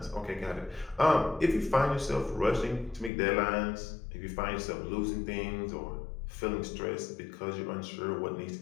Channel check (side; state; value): right; drops out; at 3.1 s